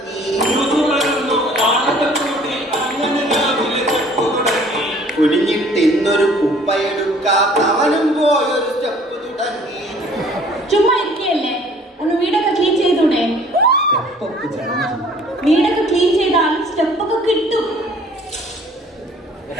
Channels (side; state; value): both; normal; correlation 0.54